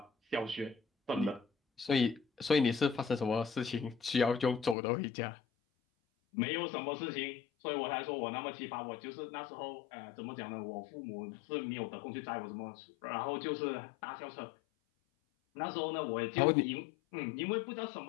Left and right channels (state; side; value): drops out; right; at 4.8 s